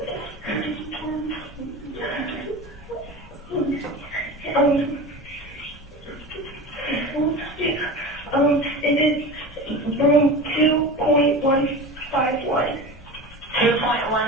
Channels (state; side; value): normal; both; correlation 0.31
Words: It is room 2.151.